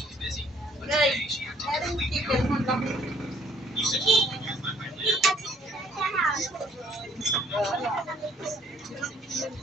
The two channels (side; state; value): both; normal; correlation 0.62